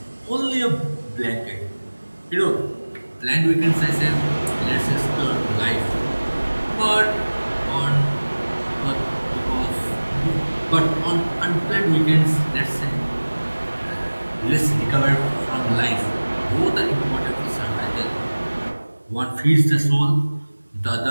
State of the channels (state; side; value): inverted; both; correlation -1.00